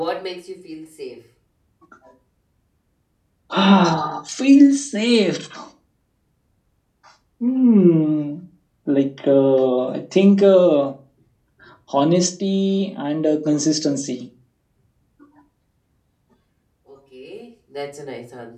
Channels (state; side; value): identical; both; correlation 1.00